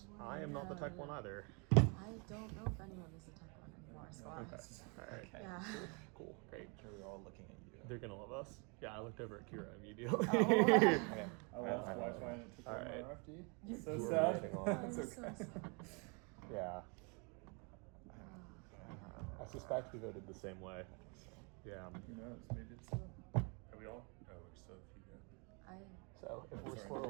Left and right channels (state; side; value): quieter; left; 33.3 dB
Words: I am not the tech one either. I don't know if anyone is a tech one anymore, so Okay. Alright. yeah. Cool. Great. We're all looking at you. They're gonna love us. Yeah, I looked over at Kira immediately. Oh. Okay. I lost Wi-Fi and it took All all my right. RFD. You- So You were sad. waiting on- I'm so sad. Yeah. I suspect we voted the same way. Yeah. Who knows? Maybe it's. Are we all? Oh, we're still a few go. I So if we're Sorry.